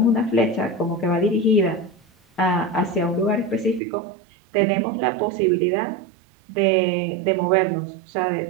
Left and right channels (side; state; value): left; drops out; at 3.8 s